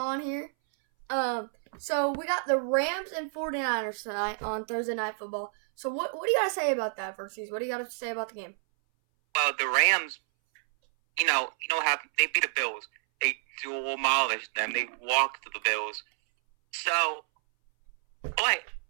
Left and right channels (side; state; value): left; silent; 58 dB below the other